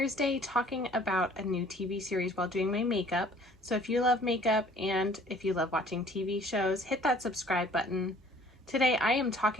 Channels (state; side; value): normal; both; correlation 0.54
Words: talking about a new TV series while doing my makeup. So if you love makeup and if you love watching TV shows, hit that subscribe button. Today I am